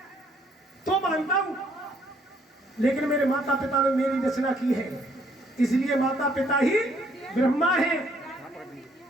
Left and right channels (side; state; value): both; normal; correlation 0.66